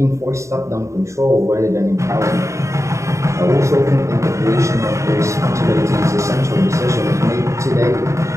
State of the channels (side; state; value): left; late; 0.14 ms